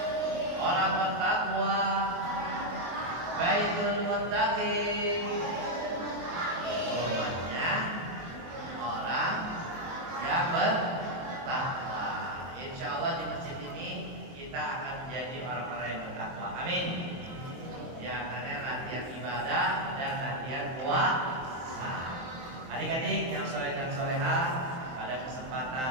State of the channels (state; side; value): late; left; 23 ms